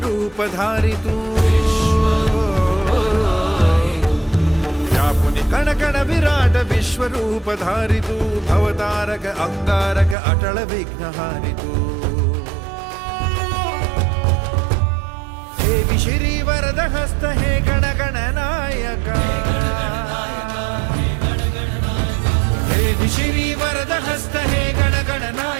धारितू, व्यापुनि कण कण विराट विश्वरूप धारितू, भवतारक अंगारक अटल विघ्नहारितू। हे विशिरी वरद हस्त हे गण गण नायका, हे विशिरी वरद हस्त हे गण गण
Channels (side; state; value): left; drops out; at 10.2 s